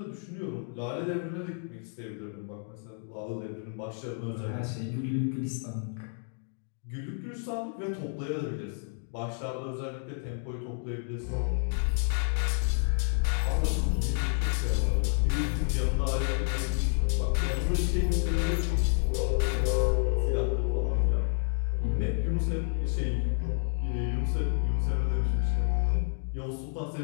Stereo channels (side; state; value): right; silent; 56 dB below the other